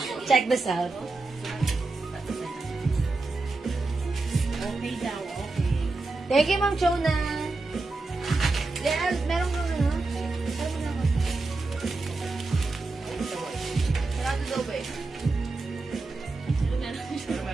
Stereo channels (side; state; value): left; quieter; 3.4 dB